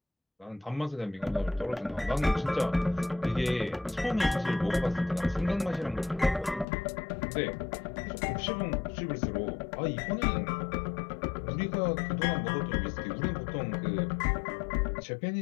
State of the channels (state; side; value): drops out; right; at 6.7 s